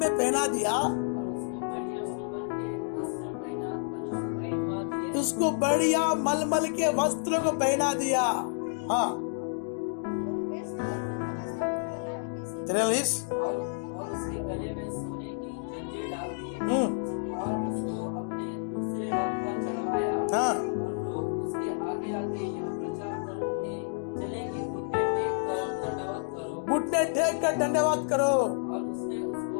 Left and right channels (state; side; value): silent; right; digital silence